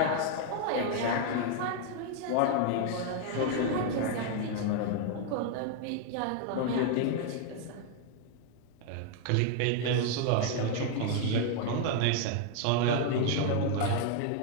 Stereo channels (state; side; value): different; both; correlation 0.00